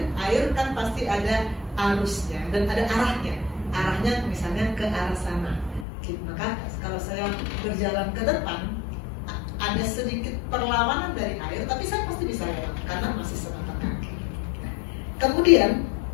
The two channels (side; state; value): right; drops out; at 5.9 s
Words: Air kan pasti ada arusnya dan ada arahnya. Arahnya misalnya ke arah sana, sedikit. Maka kalau saya berjalan ke depan, ada sedikit perlawanan dari air, tapi saya pasti bisa lewat karena masih sebatas kaki. Kemudian